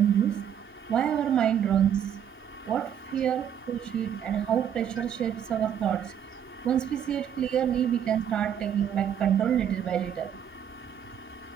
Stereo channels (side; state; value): left; quieter; 9.1 dB